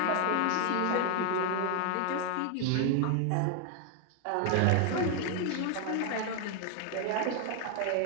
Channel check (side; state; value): both; different; correlation 0.00